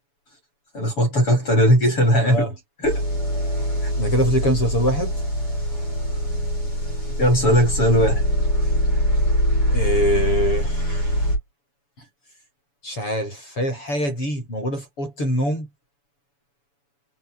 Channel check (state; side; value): late; right; 7.0 ms